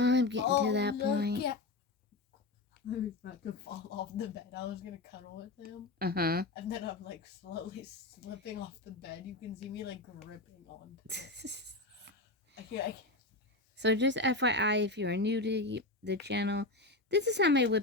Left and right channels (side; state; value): right; quieter; 3.1 dB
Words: getting to that point. Yeah. I was about to fall off the bed. I was gonna cuddle with him. Uh-huh. And then I'm like slowly slipping off the bed. You can see me like gripping on. I can't. So just FYI, if you are new to the channel, this is how my